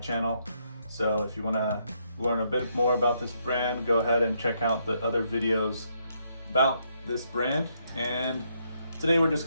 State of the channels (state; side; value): inverted; both; correlation -0.75